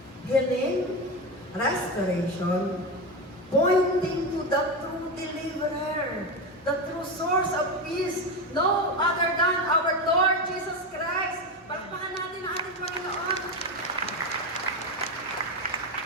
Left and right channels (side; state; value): both; normal; correlation 0.16